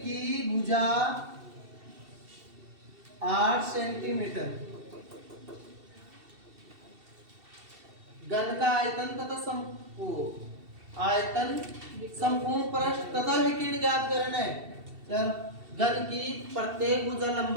भुजा 8 सेंटीमीटर। घन का आयतन तथा आयतन संपूर्ण पृष्ठ तथा विकीर्ण ज्ञात करना है। चल, घन की प्रत्येक भुजा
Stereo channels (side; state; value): left; late; 2.7 ms